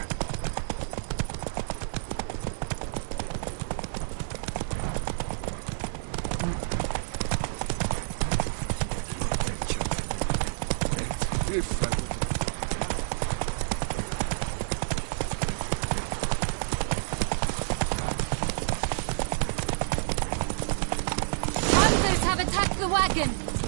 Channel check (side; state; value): left; silent; 59 dB below the other